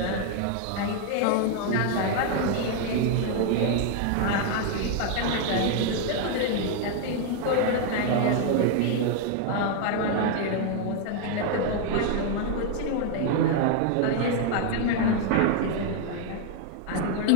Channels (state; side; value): different; both; correlation 0.00